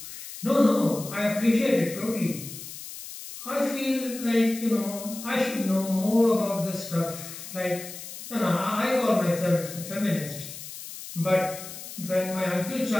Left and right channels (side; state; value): left; noise; hiss, 12 dB below the sound